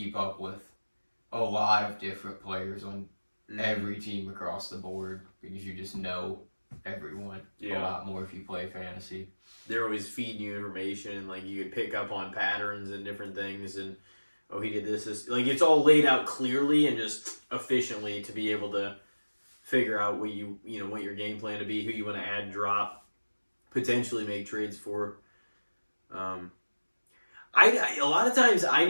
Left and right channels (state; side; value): inverted; both; correlation -1.00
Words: up with a lot of different players on every team across the board because you just know everyone a lot more if you play fantasy. They're always feeding you information and you can pick up on patterns and different things and he did this it's all laid out clearly and just efficiently to be able to figure out what what your game plan to be, who you want to add, drop, potentially make trades for. A lot of times I